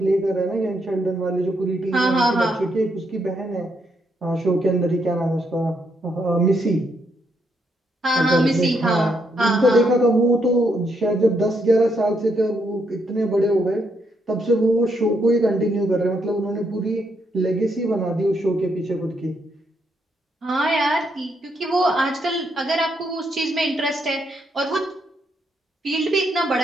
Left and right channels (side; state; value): both; normal; correlation 0.77